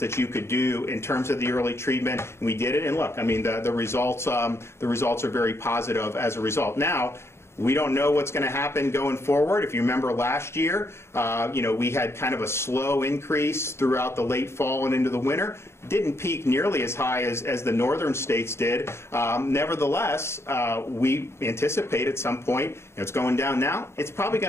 that you could do in terms of the early treatment. And we did it. And look, I mean, the results are very positive as a result. Now, we don't know what's going to happen going forward. If you remember last year, we had kind of a slow increase throughout the late fall and into the winter. Didn't peak nearly as high as the northern states did. Nevertheless, we anticipate at some point, it's going down now, it's probably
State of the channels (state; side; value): late; right; 0.13 ms